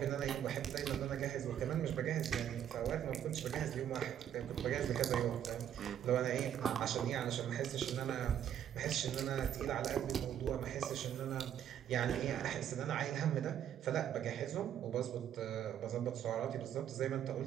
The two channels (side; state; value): left; quieter; 10.0 dB